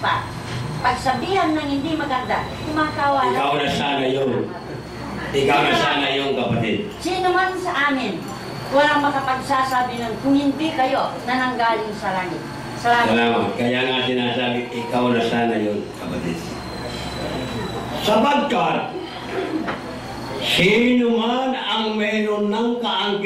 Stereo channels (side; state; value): both; identical; correlation 1.00